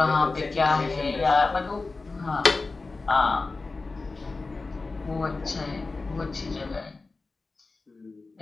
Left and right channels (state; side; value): quieter; right; 3.7 dB